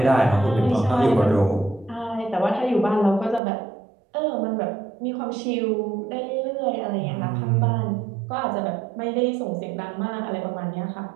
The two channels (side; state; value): left; drops out; at 3.4 s